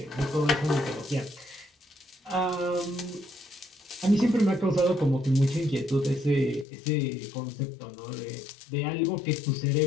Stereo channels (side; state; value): right; drops out; at 6.7 s